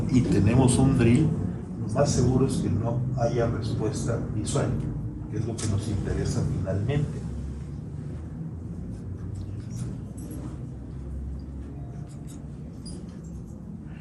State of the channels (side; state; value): both; identical; correlation 1.00